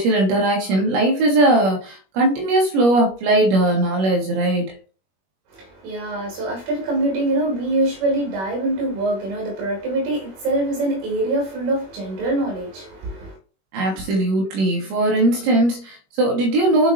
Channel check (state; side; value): late; left; 21 ms